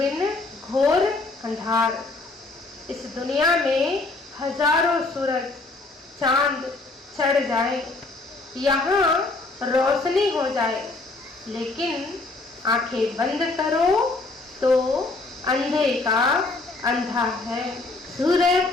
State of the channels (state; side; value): quieter; right; 3.3 dB